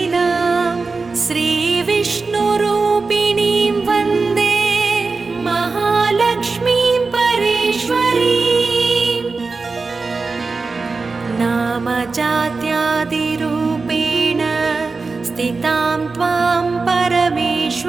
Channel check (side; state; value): left; quieter; 4.1 dB